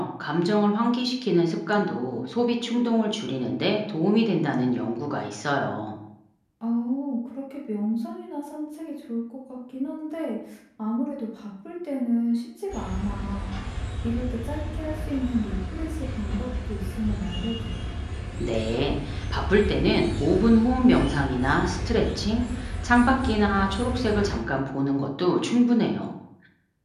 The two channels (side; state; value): both; identical; correlation 1.00